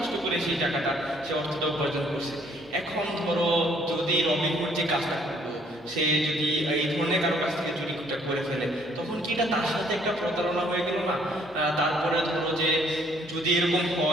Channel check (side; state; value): both; normal; correlation 0.63